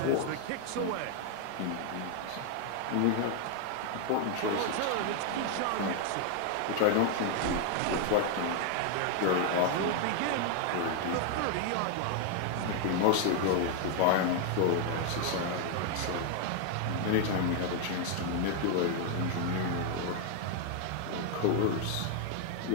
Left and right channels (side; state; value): both; different; correlation 0.00